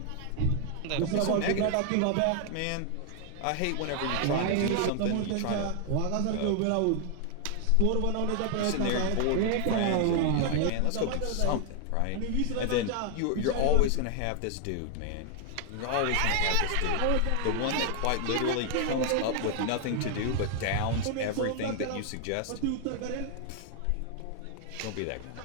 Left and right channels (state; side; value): different; both; correlation 0.00